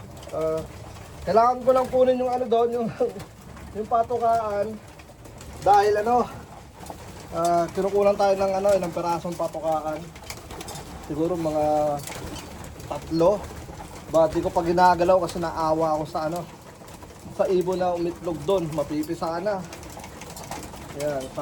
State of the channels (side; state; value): both; identical; correlation 1.00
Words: Kailangan ko lang kunin yung ano doon, yung, yung patukaan. Dahil ano, kinukunan tayo ng ano, ilang perasong patukaan. Siguro mga 3. Ba, di ko pa ginagalaw kasi naawa ako sa ano, sa ibon na umitlog doon, mapipisa na. Yan,